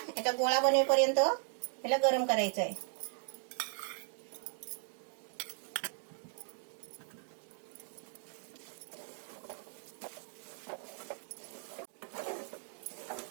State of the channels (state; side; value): silent; left; 53 dB below the other